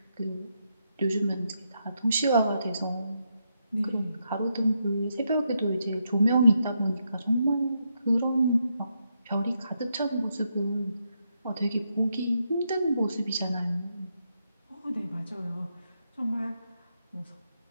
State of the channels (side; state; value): both; inverted; correlation -0.81